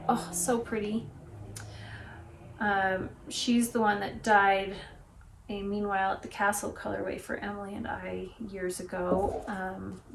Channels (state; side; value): identical; both; correlation 1.00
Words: Oh, so pretty. She's the one that dyed a Meanwhile at the Castle colorway for Emily and I years ago